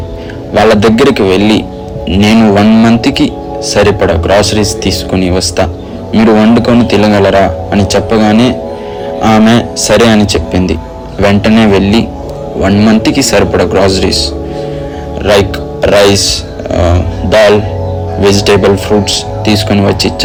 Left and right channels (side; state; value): both; identical; correlation 1.00